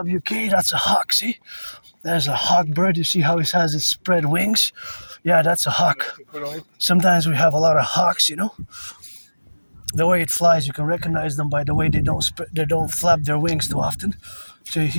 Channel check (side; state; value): both; inverted; correlation -1.00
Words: that's a hawk, see? There's a hawk bird, you see how it has its spread wings? Yeah, that's a hawk. Sometimes we have a lot of hawks, The way it flies, you can recognize them by the way they don't flap their wings too often. So